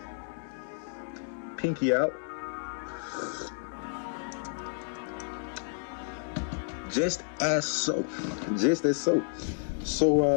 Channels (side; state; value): right; silent; digital silence